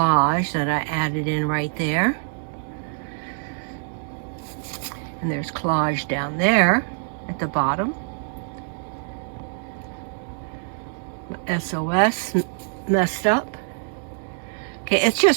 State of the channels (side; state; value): left; silent; digital silence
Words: that I added in right there. And there's collage down there at the bottom. SOS messed up. Okay,